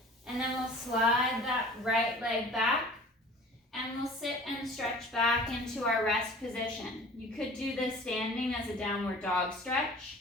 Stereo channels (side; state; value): both; normal; correlation 0.45